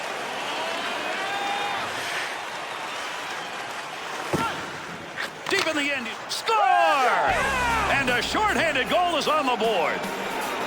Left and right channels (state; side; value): identical; both; correlation 1.00